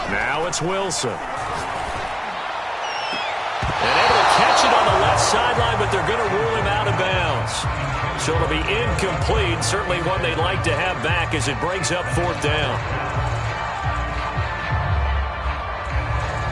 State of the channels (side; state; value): both; identical; correlation 1.00